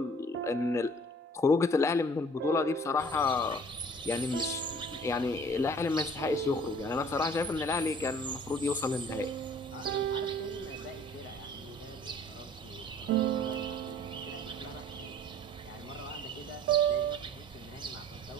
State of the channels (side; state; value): both; normal; correlation 0.52